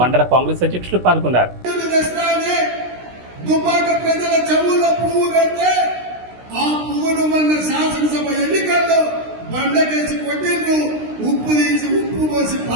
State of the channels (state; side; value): late; left; 16 ms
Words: కాంగ్రెస్ అధ్యక్షులు పాల్గొన్నారు. శాసనసభ ఎన్నికల్లో బండకేసి కొట్టిండ్రు, ఉప్పు తీసి ఉప్పు పోసి